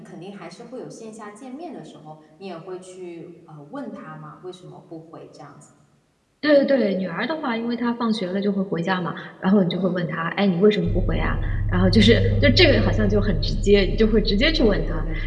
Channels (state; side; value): identical; both; correlation 1.00